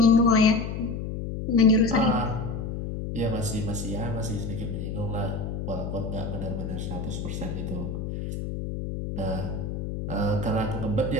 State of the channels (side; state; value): left; noise; hum, 5 dB below the sound